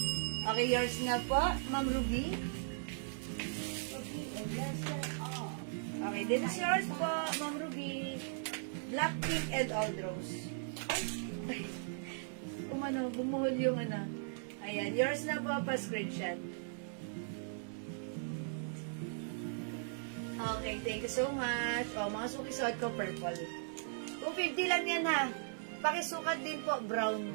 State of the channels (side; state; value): left; silent; digital silence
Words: Okay, yours na po, Ma'am Ruby. Okay, this is yours po, Ma'am Ruby. Black, pink, and old rose. Ay, umano, bumuhol yung ano. Ayan, yours na po, pa-screenshot. Okay, thank you so much. O, mga suki-suot ko, purple. 250 lang yan, ha. Pakisukat din po, brown.